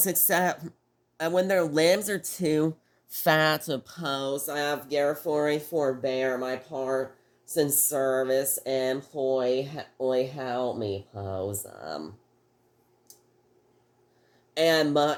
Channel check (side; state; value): both; identical; correlation 1.00